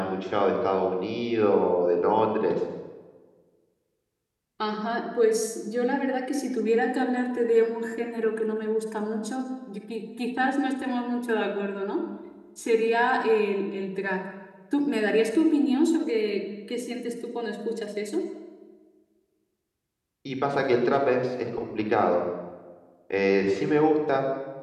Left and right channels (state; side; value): identical; both; correlation 1.00